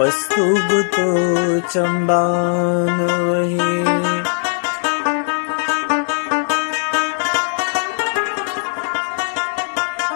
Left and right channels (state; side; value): silent; right; 60 dB below the other